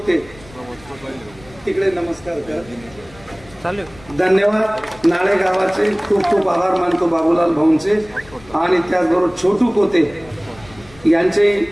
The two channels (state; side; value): noise; left; rumble, 23 dB below the sound